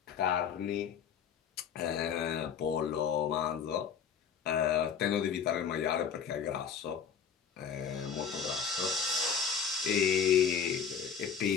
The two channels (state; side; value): quieter; right; 7.1 dB